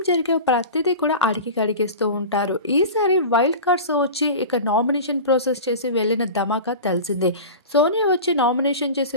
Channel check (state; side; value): inverted; both; correlation -0.32